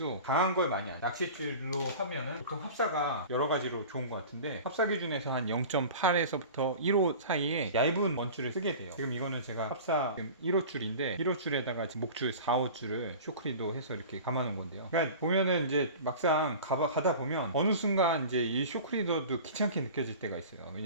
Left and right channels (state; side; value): inverted; both; correlation -0.37